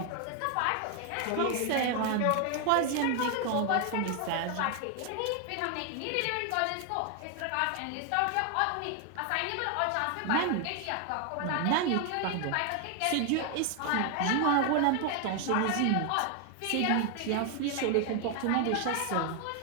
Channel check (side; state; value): both; different; correlation 0.01